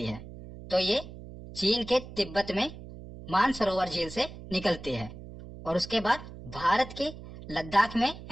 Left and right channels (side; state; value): right; noise; hum, 14 dB below the sound